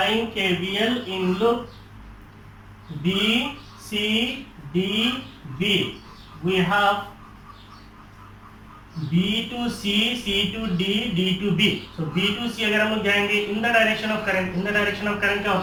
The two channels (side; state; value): both; identical; correlation 1.00